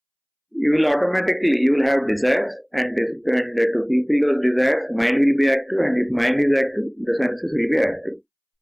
you will have desires, and to fulfill those desires, mind will be active, and if mind is active, the senses will be active.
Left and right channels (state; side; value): identical; both; correlation 1.00